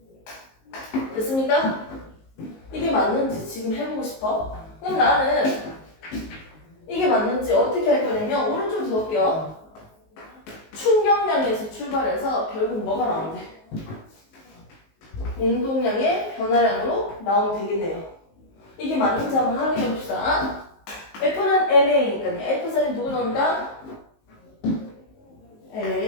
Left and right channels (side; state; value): right; late; 19 ms